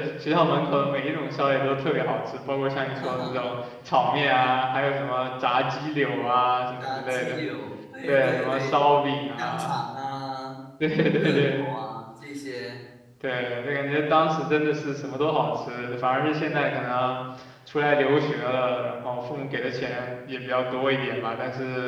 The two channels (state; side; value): identical; both; correlation 1.00